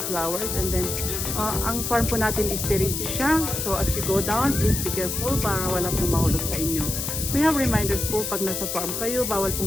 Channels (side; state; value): left; noise; hiss, 3 dB below the sound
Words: flowers. And then ang farm po natin is terrace siya. So as you go down, please be careful para wala pong mahulog sa inyo. We have reminders po pag nasa farm kayo, bawal